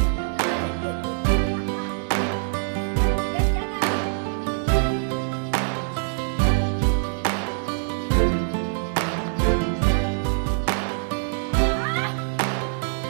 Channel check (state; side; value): silent; left; digital silence